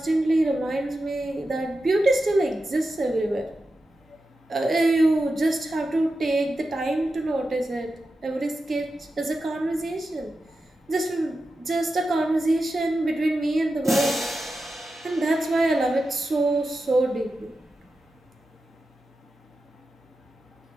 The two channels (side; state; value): both; normal; correlation 0.91